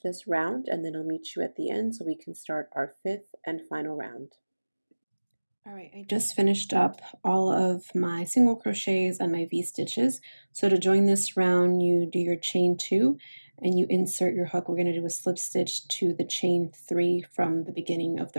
round and then I'll meet you at the end so we can start our 5th and final round. All right, I just finished up all of my single crochets and my V-stitches. So to join this round, you do your chain 2 and you insert your hook. We're going to do a slip stitch to the chain 3 from the beginning of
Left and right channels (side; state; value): both; inverted; correlation -1.00